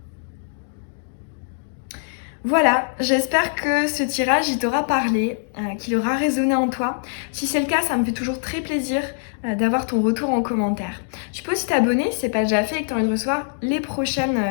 Voilà, j'espère que ce tirage, il t'aura parlé, qu'il aura résonné en toi. Si c'est le cas, ça me fait toujours très plaisir d'avoir ton retour en commentaire. Tu peux aussi t'abonner si ce n'est pas déjà fait et que tu as envie de recevoir les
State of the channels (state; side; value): silent; right; digital silence